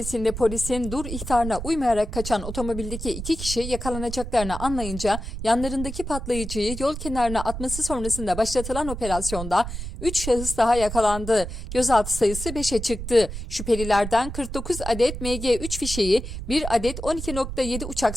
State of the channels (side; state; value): right; noise; rumble, 7 dB below the sound